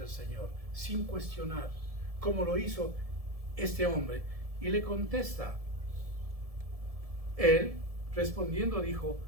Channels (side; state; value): left; late; 1.7 ms